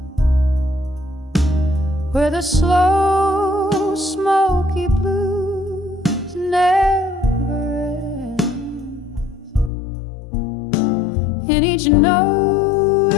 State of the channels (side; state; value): right; drops out; at 9.7 s